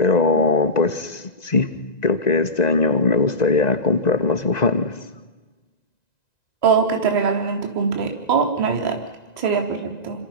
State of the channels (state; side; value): late; right; 1.9 ms